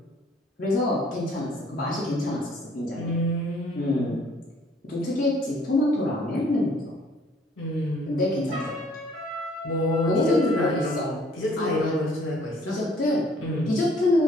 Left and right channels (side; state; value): both; normal; correlation 0.60